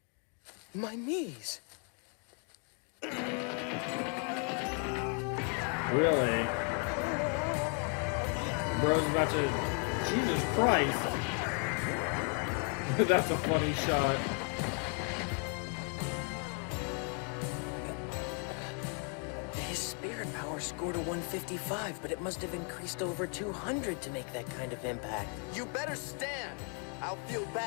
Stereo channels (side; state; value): right; quieter; 38.0 dB